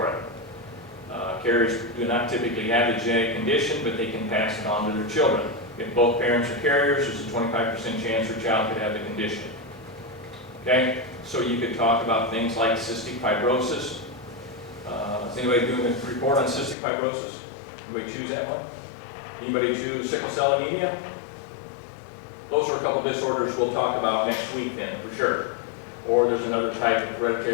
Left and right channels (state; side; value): drops out; right; at 16.8 s